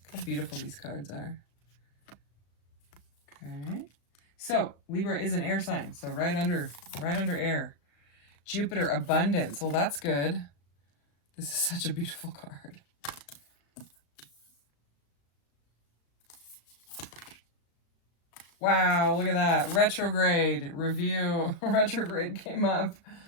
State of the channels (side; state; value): right; late; 35 ms